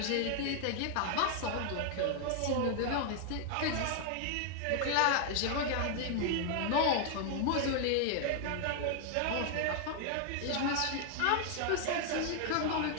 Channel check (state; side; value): different; both; correlation 0.00